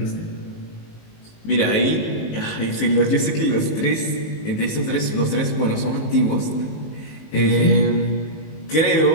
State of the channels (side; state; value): right; late; 19 ms